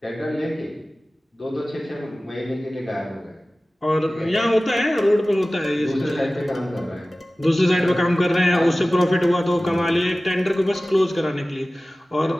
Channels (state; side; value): normal; both; correlation 0.97